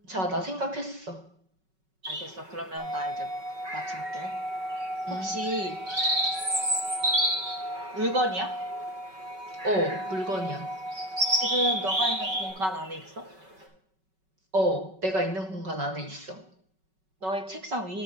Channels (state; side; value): late; left; 5.3 ms